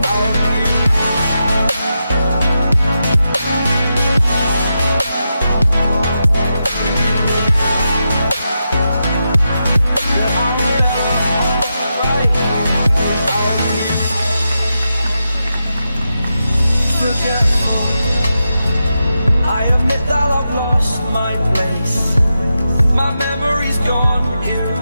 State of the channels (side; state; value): both; inverted; correlation -0.87